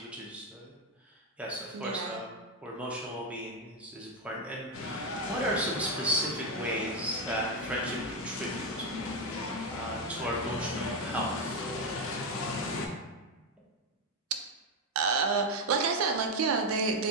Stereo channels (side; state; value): both; normal; correlation 0.06